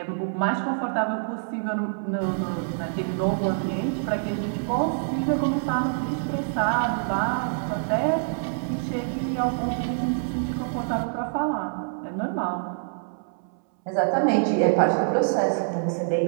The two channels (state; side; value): silent; left; 61 dB below the other